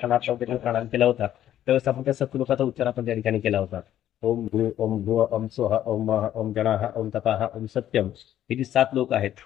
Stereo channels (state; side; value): quieter; right; 11.7 dB